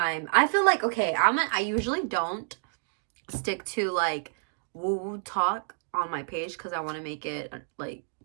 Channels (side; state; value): left; silent; digital silence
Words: I feel like, okay, I usually don't stick to like woo-woo talk on my page because I want to make it like